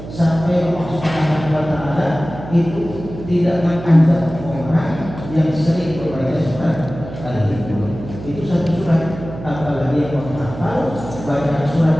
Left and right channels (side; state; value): right; noise; hum, 12 dB below the sound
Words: sampai Allah Subhanahu wa Ta'ala itu tidak menganggap orang yang sering membaca surat Al-Quran. Itu satu surat, apalagi yang menghafal banyak